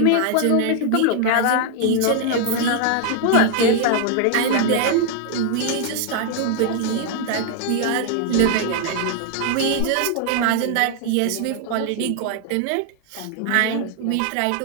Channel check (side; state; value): both; different; correlation 0.00